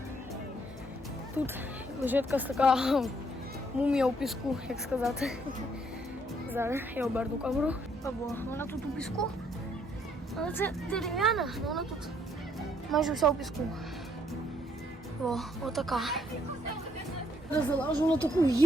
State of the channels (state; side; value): normal; both; correlation 0.68